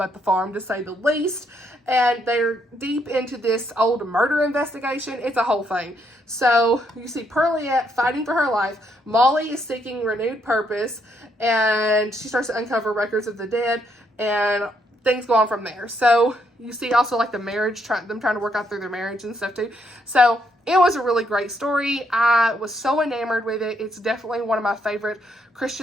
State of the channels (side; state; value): both; normal; correlation 0.74